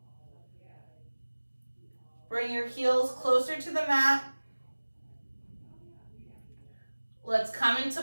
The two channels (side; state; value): both; inverted; correlation -1.00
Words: Bring your heels closer to the mat. Let's come into